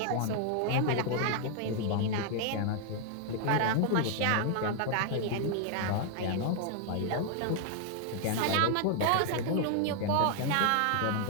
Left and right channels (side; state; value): both; different; correlation 0.00